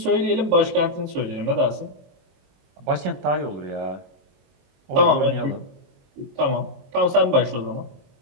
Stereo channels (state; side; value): late; left; 22 ms